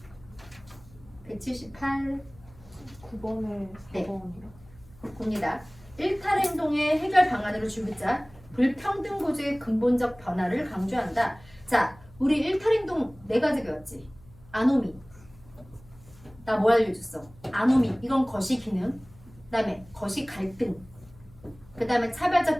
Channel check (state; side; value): noise; left; hum, 23 dB below the sound